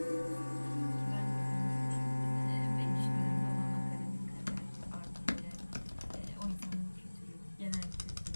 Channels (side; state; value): both; inverted; correlation -1.00